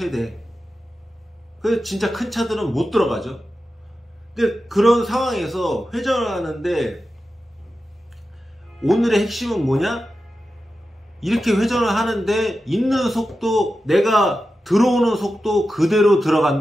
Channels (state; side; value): normal; both; correlation 0.92